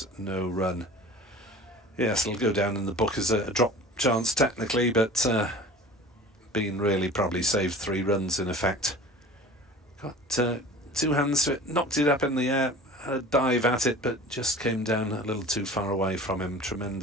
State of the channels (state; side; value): normal; both; correlation 0.41